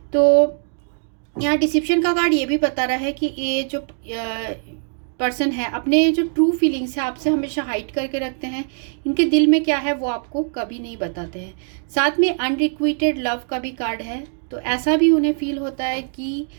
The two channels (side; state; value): left; silent; 58 dB below the other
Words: तो यहाँ डिसिप्शन का कार्ड ये भी बता रहा है कि ये जो पर्सन है अपने जो ट्रू फीलिंग्स है आपसे हमेशा हाइड करके रखते हैं, इनके दिल में क्या है वो आपको कभी नहीं बताते हैं। साथ में अनरिक्विटेड लव का भी कार्ड है, तो ऐसा भी उन्हें फील होता है कि